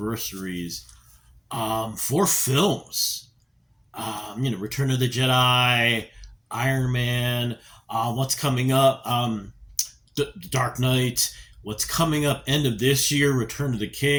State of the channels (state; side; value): identical; both; correlation 1.00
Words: for films. Return of the Jedi, Iron Man, what's coming up, Dark Knight, what's coming up end of this year, Return of the